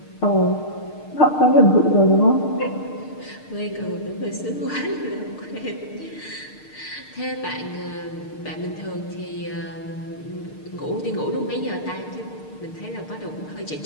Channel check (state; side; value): late; right; 6.6 ms